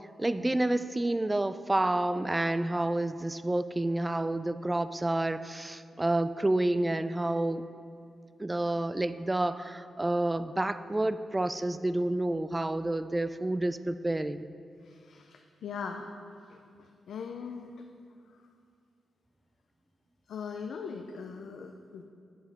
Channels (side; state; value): both; normal; correlation 0.98